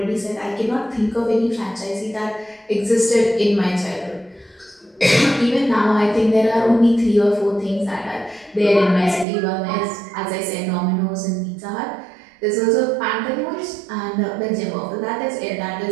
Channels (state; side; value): drops out; left; at 9.2 s